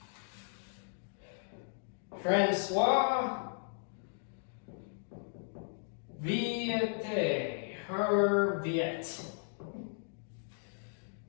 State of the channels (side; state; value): right; silent; digital silence